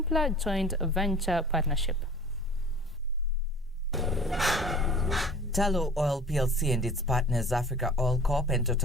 joint venture partnership. Tullow Oil PLC and its partners Africa Oil Corp and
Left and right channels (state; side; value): normal; both; correlation 0.45